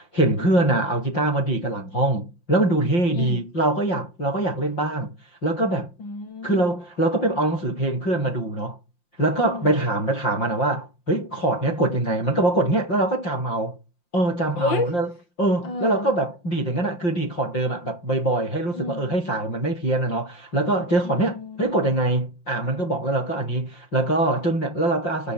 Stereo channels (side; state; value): right; late; 5.7 ms